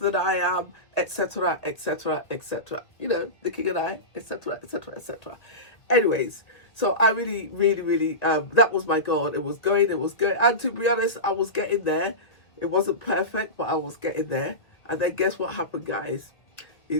I am, etc., etc., etc. You know, the king and I, etc., etc., etc. Anyways, so I really, really, really, that was my goal. It was going. And to be honest, I was getting there. It wasn't perfect, but I was getting there. And then guess what happened, guys?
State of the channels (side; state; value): right; late; 1.6 ms